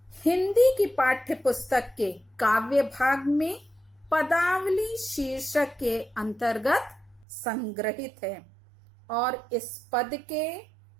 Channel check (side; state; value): left; drops out; at 7.2 s